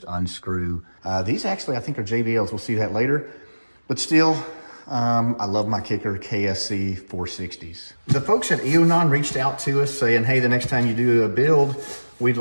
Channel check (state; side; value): inverted; both; correlation -1.00